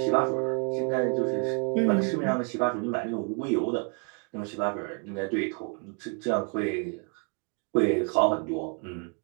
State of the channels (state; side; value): quieter; left; 37.1 dB